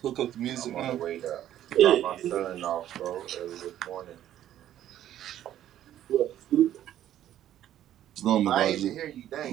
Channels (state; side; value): quieter; left; 11.9 dB